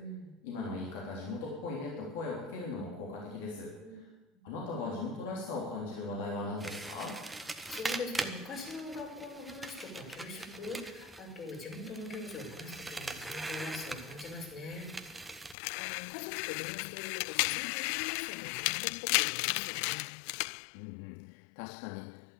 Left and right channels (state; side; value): drops out; right; at 15.6 s